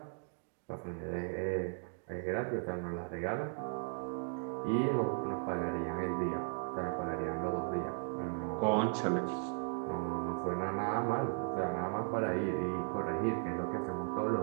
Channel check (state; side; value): silent; left; 53 dB below the other